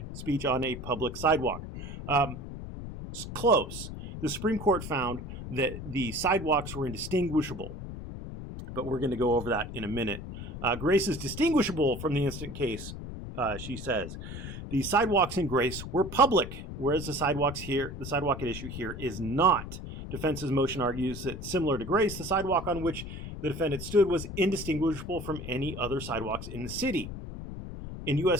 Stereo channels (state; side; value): noise; left; rumble, 9 dB below the sound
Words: speech on a public sidewalk. It's close. The Supreme Court found that the sidewalks were indistinguishable, but we're going to go over that in a minute. Grace is distinguishable from the instant case, she says. The sidewalks in Grace were public, whereas the sidewalk at issue here is not. Defense's motion argues that, similar to Grace, the sidewalk on which the defendant stood was indistinguishable from any other sidewalks in the city. In